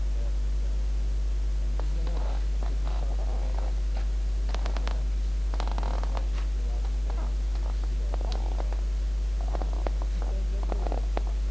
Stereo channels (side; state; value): right; noise; hum, 18 dB below the sound